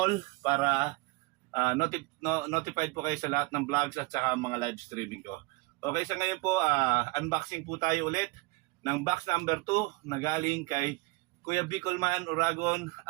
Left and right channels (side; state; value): left; quieter; 24.7 dB